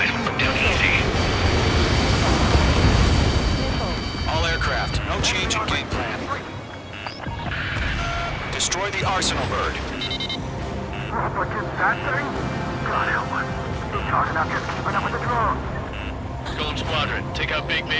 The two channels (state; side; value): identical; both; correlation 1.00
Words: will go down easy. All aircraft, no change in game plan. Destroy the Arsenal bird. What's in that thing? God help us. You're talking about just keeping up with the drones. Golem Squadron, take out Big